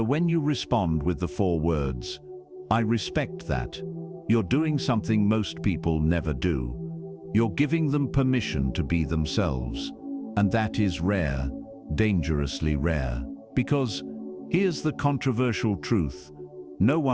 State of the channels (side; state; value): both; identical; correlation 1.00